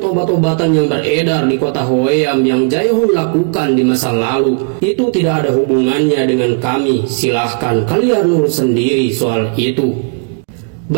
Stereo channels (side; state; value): left; quieter; 38.7 dB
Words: obat-obatan yang beredar di kota Hwaeam yang Jae-hon lakukan di masa lalu. Itu tidak ada hubungannya dengan kami. Silahkan kalian urus sendiri soal itu."